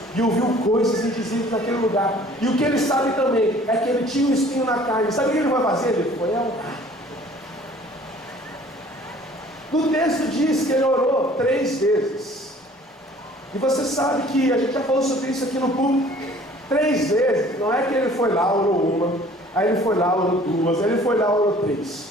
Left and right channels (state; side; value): normal; both; correlation 0.52